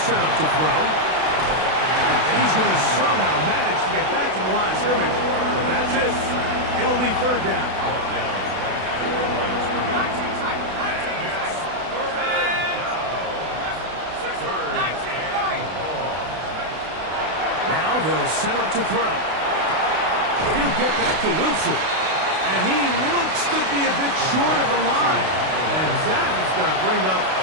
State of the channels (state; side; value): late; left; 32 ms